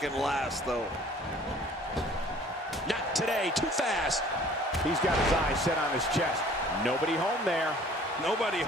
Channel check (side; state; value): both; normal; correlation 0.52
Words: last, though. Not today, too fast. He's got his eyes set on his chest. Nobody home there. Nobody